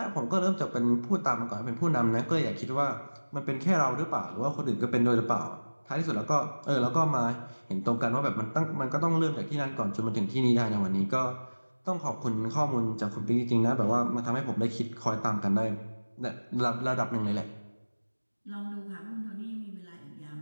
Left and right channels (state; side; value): inverted; both; correlation -1.00